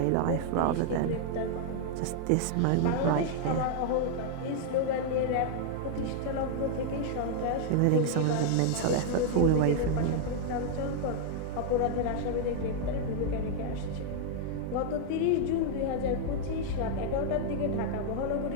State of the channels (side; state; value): both; different; correlation -0.01